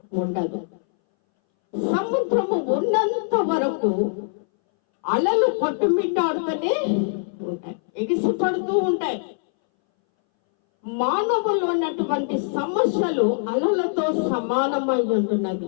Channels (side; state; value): right; silent; 62 dB below the other